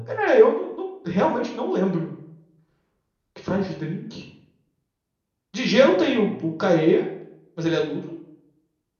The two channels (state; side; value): identical; both; correlation 1.00